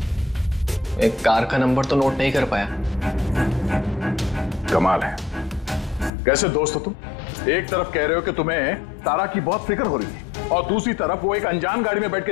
एक कार का नंबर तो नोट नहीं कर पाया। कमाल है, कैसे दोस्त हो तुम? एक तरफ कह रहे हो कि तुम्हें तारा की बहुत फिक्र हो रही है और दूसरी तरफ वो एक अनजान गाड़ी में बैठ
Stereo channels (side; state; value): right; drops out; at 6.1 s